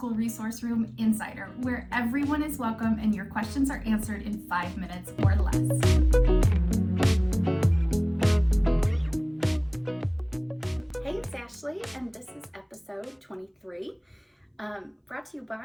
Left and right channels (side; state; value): both; identical; correlation 1.00